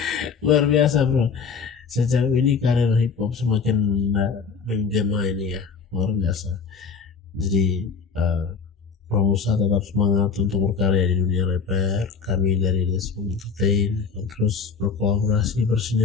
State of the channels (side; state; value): right; quieter; 5.6 dB